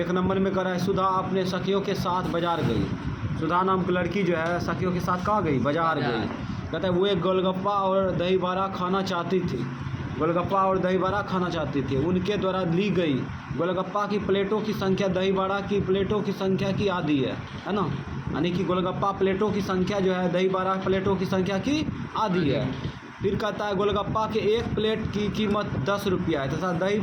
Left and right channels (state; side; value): identical; both; correlation 1.00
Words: नंबर में करा है, सुधा अपने सखियों के साथ बाजार गई। सुधा नाम की लड़की जो है सखियों के साथ कहाँ गई? बाजार गई। कहता है वो एक गोलगप्पा और दही बड़ा खाना चाहती थी। गोलगप्पा और दही बड़ा खाना चाहती थी। उनके द्वारा ली गई गोलगप्पा की प्लेटों की संख्या दही बड़ा की प्लेटों की संख्या की आधी है ना। यानी कि गोलगप्पा प्लेटों की संख्या जो है दही बड़ा प्लेटों की संख्या की आधी है। फिर कहता है गोलगप्पा के एक प्लेट की कीमत 10 रुपया है तथा दही